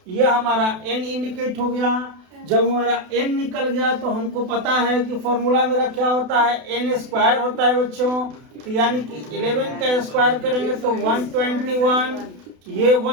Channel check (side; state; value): left; late; 32 ms